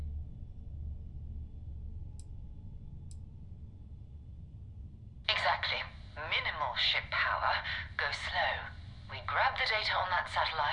minimal ship power, go slow. We grab the data on that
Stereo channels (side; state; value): both; identical; correlation 1.00